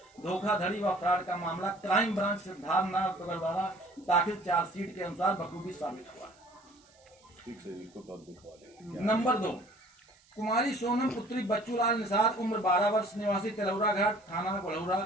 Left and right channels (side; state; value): right; noise; hiss, 30 dB below the sound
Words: धोखाधड़ी व फ्रॉड का मामला क्राइम ब्रांच सिद्धार्थनगर द्वारा दाखिल चार्जशीट के अनुसार बखूबी साबित हुआ। नंबर 2, कुमारी सोनम पुत्री बच्चूलाल निसार उम्र 12 वर्ष निवासी तिलौरा घाट थाना